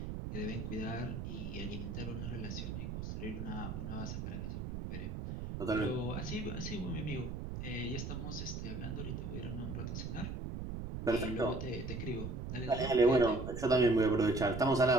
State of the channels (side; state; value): right; noise; rumble, 5 dB below the sound